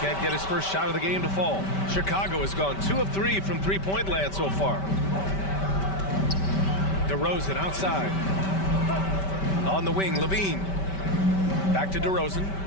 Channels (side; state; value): right; late; 5.2 ms